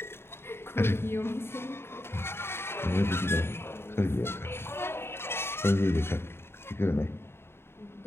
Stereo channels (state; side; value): late; right; 0.12 ms